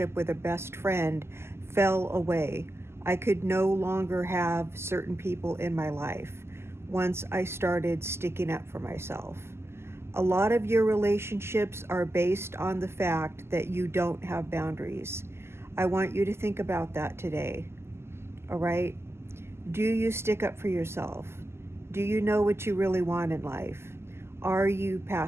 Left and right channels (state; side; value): late; left; 0.12 ms